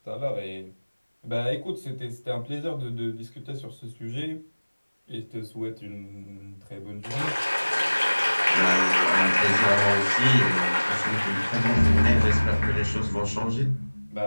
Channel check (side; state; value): both; inverted; correlation -1.00